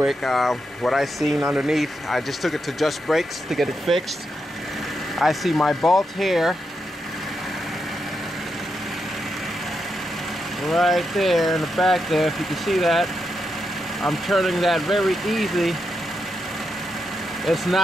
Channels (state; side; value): normal; both; correlation 0.84